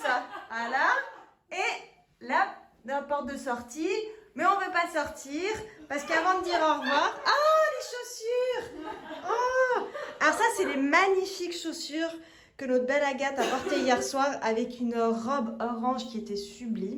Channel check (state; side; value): identical; both; correlation 1.00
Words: ça. Voilà. Et là, dans la porte de sortie. Mais on veut pas sortir parce qu'avant de dire au revoir. Ah, les chaussures. Oh. Alors ça, c'est les magnifiques chaussures que notre belle Agathe a portées hier soir avec une robe orange qui était